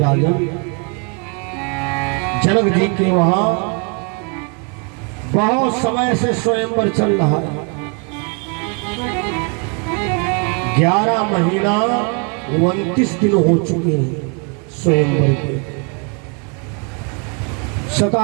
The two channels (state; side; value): quieter; left; 35.5 dB